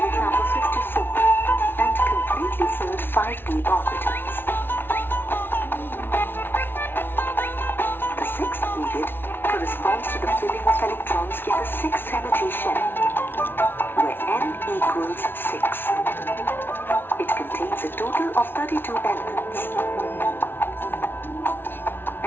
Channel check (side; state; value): right; late; 0.10 ms